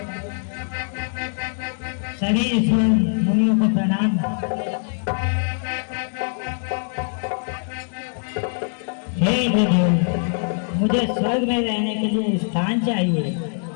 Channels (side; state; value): right; silent; 57 dB below the other